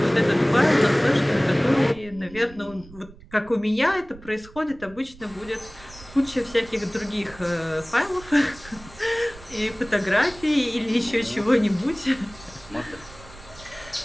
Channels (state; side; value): noise; right; rumble, 20 dB below the sound